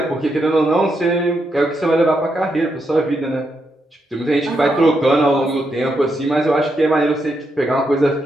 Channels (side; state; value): both; normal; correlation 0.81